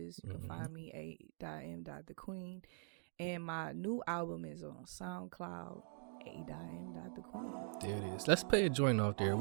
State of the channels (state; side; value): silent; left; digital silence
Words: You can find me a.m.thequeen. And my new album is on SoundCloud, a.m.thequeen. There it is. Let's play a joint off there.